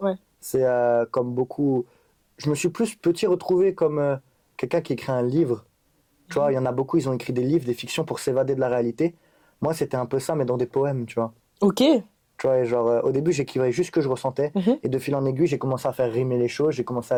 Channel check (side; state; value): both; identical; correlation 1.00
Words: C'est comme beaucoup... Je me suis plus petit retrouvé comme quelqu'un qui écrit un livre Tu vois, il y en a beaucoup, ils ont écrit des livres, des fictions pour s'évader de la réalité. Moi, c'était un peu ça, mais dans des poèmes, tu vois. Ok. Tu vois, et genre, au début, j'écrivais juste ce que je ressentais. Mhm. Et de fil en aiguille, j'ai commencé à faire rimer les choses, j'ai commencé